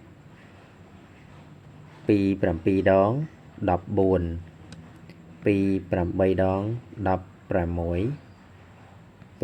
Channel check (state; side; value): identical; both; correlation 1.00